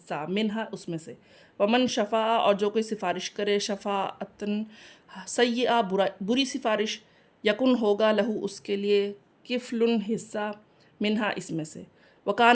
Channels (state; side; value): identical; both; correlation 1.00